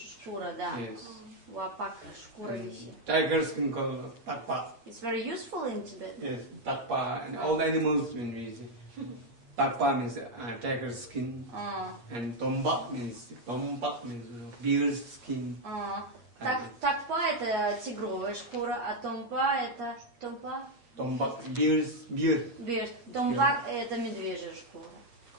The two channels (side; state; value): left; late; 8.5 ms